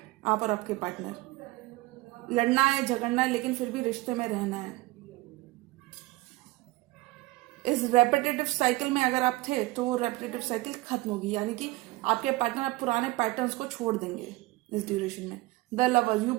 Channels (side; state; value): left; quieter; 20.9 dB